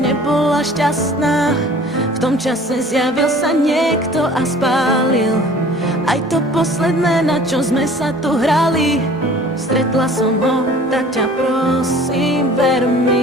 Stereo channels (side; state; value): both; normal; correlation 0.48